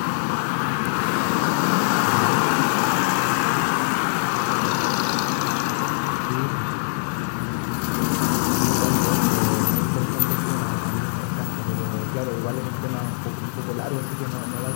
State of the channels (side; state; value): right; silent; digital silence